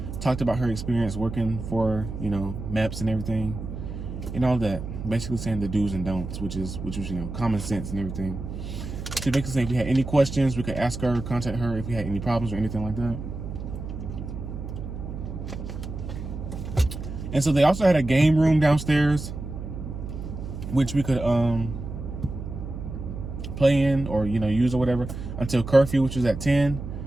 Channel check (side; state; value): right; noise; hum, 8 dB below the sound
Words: talked about her experience working for, Meps and everything, and all that. Basically saying the do's and don'ts, which was common sense and everything. She basically said if we had any questions, we could ask her, contact her if we had any problems or anything like that. And so they also had a game room downstairs, which we could play in or use or whatever until curfew, which was at 10.